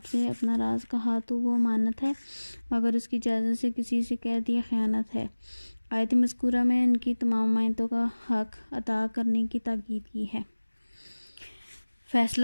سے اپنا راز کہا تو وہ امانت ہے، مگر اس کی اجازت سے کسی سے کہہ دیا خیانت ہے. آیت مذکورہ میں ان کی تمام امانتوں کا حق ادا کرنے کی تاکید کی ہے.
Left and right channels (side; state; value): both; inverted; correlation -1.00